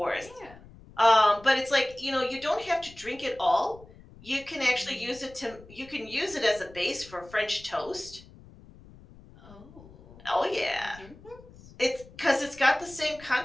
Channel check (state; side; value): noise; left; rumble, 21 dB below the sound